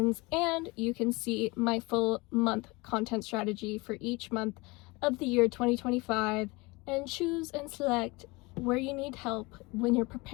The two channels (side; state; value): right; quieter; 24.7 dB